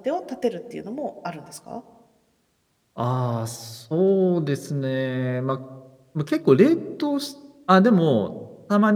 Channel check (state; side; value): identical; both; correlation 1.00